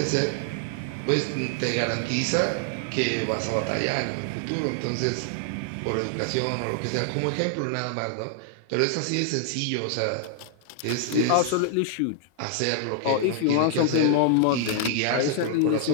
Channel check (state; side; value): different; both; correlation 0.00